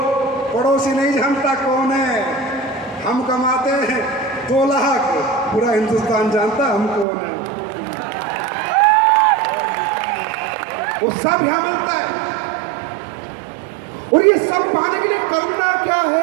पड़ोसी नहीं जानता कौन है। हम कमाते हैं 2 लाख, पूरा हिंदुस्तान जानता हम कौन है। वो सब यहां मिलता है। और ये सब पाने के लिए करना क्या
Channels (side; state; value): left; drops out; at 7.1 s